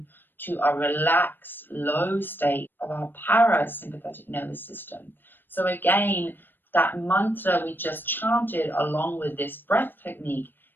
to a relaxed, low state of our parasympathetic nervous system. So, again, that mantra we just chanted along with this breath technique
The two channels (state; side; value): late; right; 0.094 ms